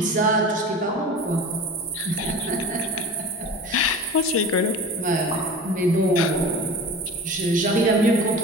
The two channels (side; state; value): both; normal; correlation 0.36